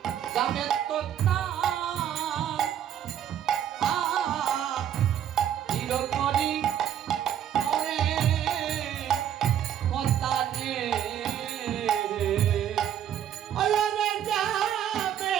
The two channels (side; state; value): left; quieter; 10.1 dB